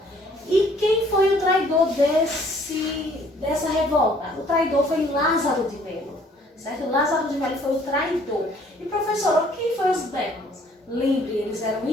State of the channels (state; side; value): normal; both; correlation 0.59